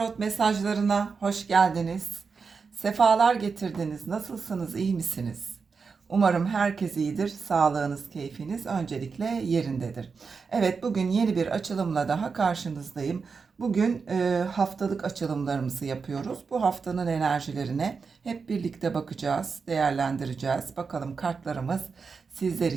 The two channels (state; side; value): quieter; left; 5.2 dB